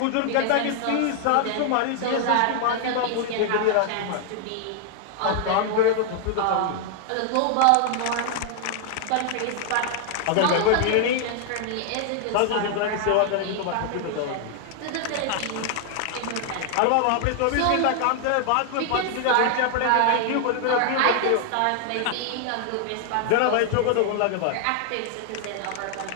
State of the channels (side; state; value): both; different; correlation 0.00